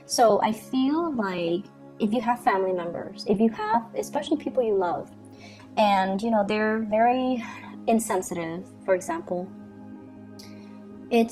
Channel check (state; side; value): identical; both; correlation 1.00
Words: So I feel like if you have family members, if you have, especially people you love, and, you know, they're very insensitive, for example,